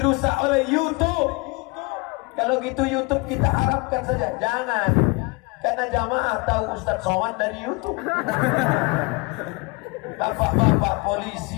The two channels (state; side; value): quieter; right; 27.8 dB